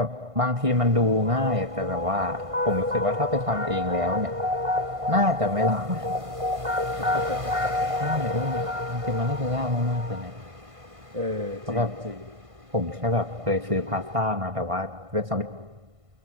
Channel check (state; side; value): late; left; 1.5 ms